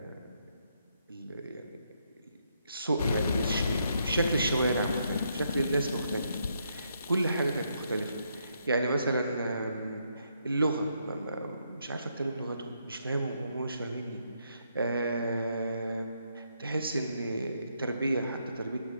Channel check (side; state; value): both; inverted; correlation -0.76